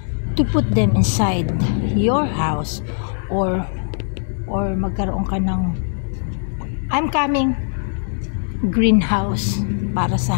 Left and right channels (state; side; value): silent; right; digital silence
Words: to put them inside your house or magkaroon ka ng greenhouse para sa